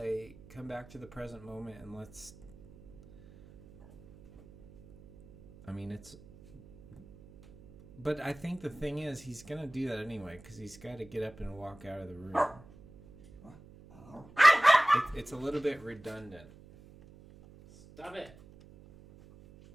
come back to the present moment and let's. I mean, it's. But I think the thing is, he's gonna do that anyway because he's got to get up and walk out of the room. It's a little bit redundant. Stop it.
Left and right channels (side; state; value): right; noise; hum, 21 dB below the sound